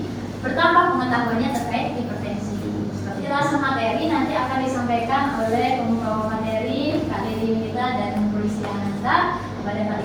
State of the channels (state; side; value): identical; both; correlation 1.00